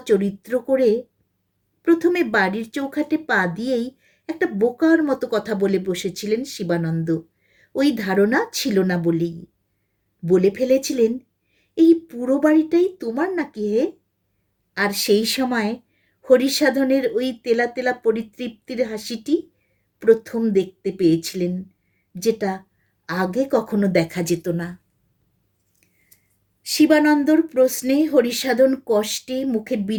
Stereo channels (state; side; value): identical; both; correlation 1.00